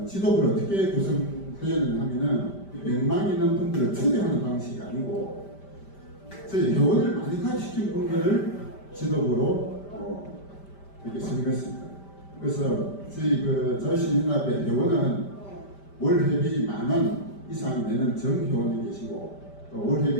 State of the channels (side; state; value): right; late; 5.1 ms